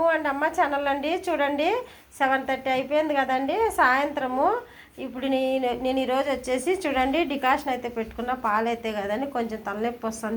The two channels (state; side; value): identical; both; correlation 1.00